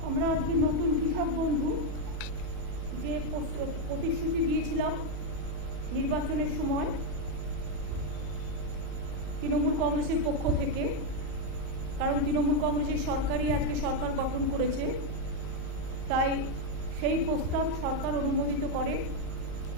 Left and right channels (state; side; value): late; left; 3.6 ms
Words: আমরা আজকে নতুন কৃষক বন্ধু যে প্রতিশ্রুতি দিয়েছিলাম নির্বাচনের সময় তৃণমূল কংগ্রেসের পক্ষ থেকে, কারণ তৃণমূল কংগ্রেসের সরকারই আজকে সরকার গঠন করেছে, তাই সেই প্রস্তাব সরকার অনুমোদিত করে